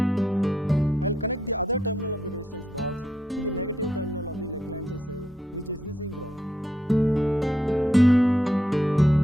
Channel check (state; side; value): normal; both; correlation 0.78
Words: I'll connect the other terminal of the resistance box to the negative terminal of the Leclanché cell, which is the zinc rod.